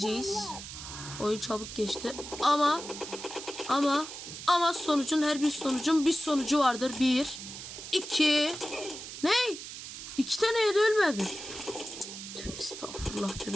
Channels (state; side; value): noise; right; hiss, 10 dB below the sound